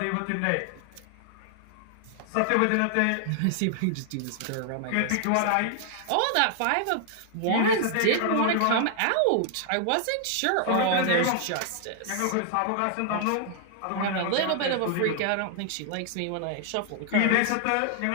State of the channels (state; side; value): different; both; correlation 0.00